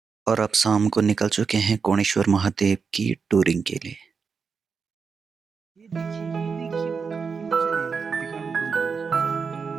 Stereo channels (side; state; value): left; quieter; 5.5 dB